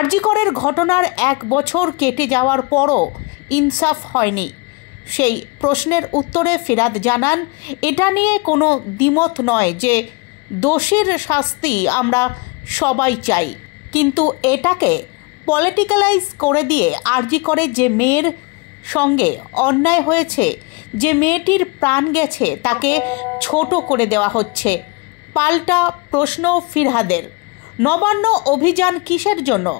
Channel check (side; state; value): right; quieter; 28.1 dB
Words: করের ঘটনার 1 বছর কেটে যাওয়ার পরও ইনসাফ হয়নি। সেই প্রশ্নের উত্তরে ফিরহাদ জানান, এটা নিয়ে কোনো দ্বিমত নয় যে দোষীর শাস্তি আমরা সবাই চাই, কিন্তু এটাকে পলিটিক্যালাইজ করে দিয়ে আরজি করে যে মেয়ের সঙ্গে অন্যায় হয়েছে, যে মেয়েটির প্রাণ গেছে, তাকে ছোট করে দেওয়া হচ্ছে। পাল্টা প্রশ্ন ফিরহাদের, নবান্ন অভিযান কিসের জন্য?